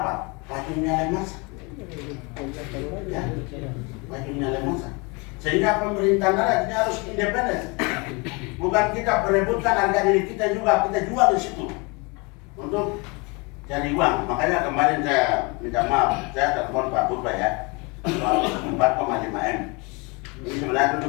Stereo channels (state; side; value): quieter; right; 29.0 dB